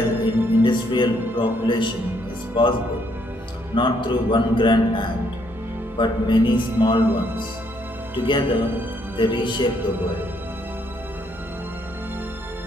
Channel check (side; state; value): both; normal; correlation 0.71